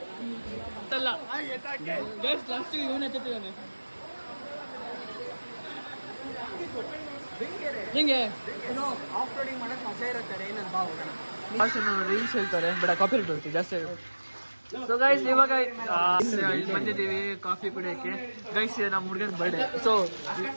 ಅಲ್ಲ ಲಾಸ್ಟಿಗೆ ಇವನು ಎತ್ತಿದ್ದಾನೆ ಹಿಂಗೆ ರೀಲ್ಸ್ ಹೇಳ್ತಾರೆ ಬಟ್ ಕಾಪಿ ರೇಟ್ ಬರುತ್ತೆ ಜಾಸ್ತಿ. ಸೊ ಗೈಸ್ ಇವಾಗ ಇಲ್ಲಿ ಬಂದಿದ್ದೀವಿ ಕಾಫಿ ಕುಡಿಯೋಕ್ಕೆ. ಗೈಸ್ ನಮ್ಮ ಹುಡುಗನ birthday. So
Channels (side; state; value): both; inverted; correlation -1.00